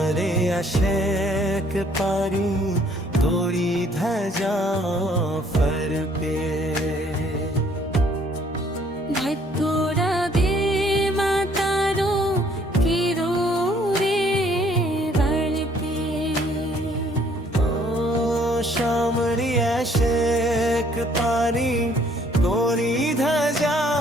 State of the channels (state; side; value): normal; both; correlation 0.62